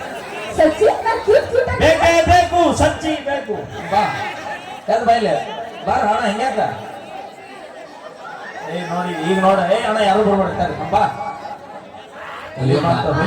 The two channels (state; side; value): identical; both; correlation 1.00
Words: ಬೇಕೇ ಬೇಕು, ಸಚ್ಚಿ ಬೇಕು. ಬಾ ಯಾವ್ದು ಬೈಲೆ ಬಾರ ಅಣ್ಣ ಹೆಂಗ್ಯಾಕ ನೋಡಿ ಈಗ ನೋಡ. ಅಣ್ಣ ಯಾರು ಬರ್ಬಿಡ್ತಾರೆ ಬಾ.